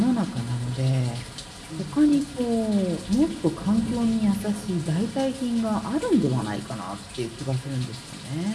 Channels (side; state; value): both; identical; correlation 1.00